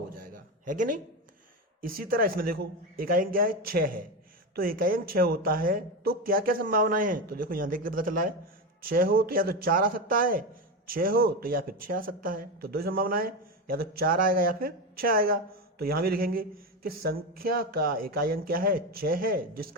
जाएगा, है कि नहीं। इसी तरह इसमें देखो इकाई अंक क्या है? 6 है। तो इकाई अंक 6 होता है तो क्या क्या संभावनाएं हैं? तो देखो यहां देख के पता चला है, 6 हो तो या तो 4 आ सकता है, 6 हो तो या फिर 6 आ सकता है। तो 2 संभावनाएं, या तो 4 आएगा या फिर 6 आएगा। तो यहां भी लिखेंगे कि संख्या का इकाई अंक क्या है? 6 है।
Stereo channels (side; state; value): both; normal; correlation 0.16